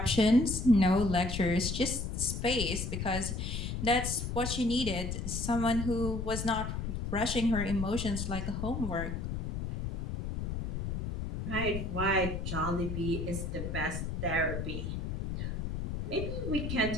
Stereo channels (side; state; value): left; noise; rumble, 4 dB below the sound